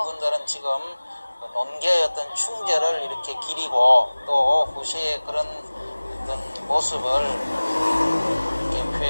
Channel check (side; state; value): both; inverted; correlation -1.00